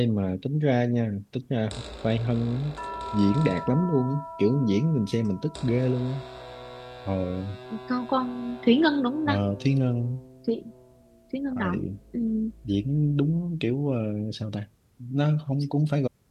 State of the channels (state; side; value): identical; both; correlation 1.00